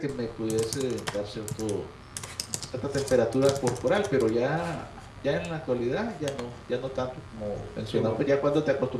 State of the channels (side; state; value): both; identical; correlation 1.00